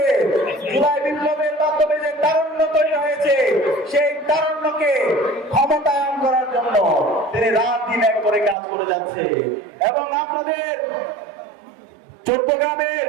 জুলাই বিপ্লবের মাধ্যমে যে তারুণ্য তৈরি হয়েছে সেই তারুণ্যকে ক্ষমতায়ন করার জন্য তিনি রাত দিন এক করে কাজ করে যাচ্ছে। এবং আপনাদের চট্টগ্রামের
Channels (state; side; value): drops out; left; at 8.6 s